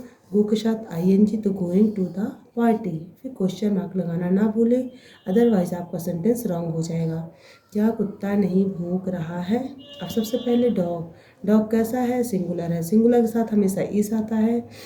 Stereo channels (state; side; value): identical; both; correlation 1.00